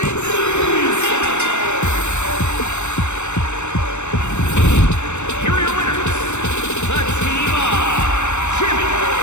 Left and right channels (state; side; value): late; right; 0.83 ms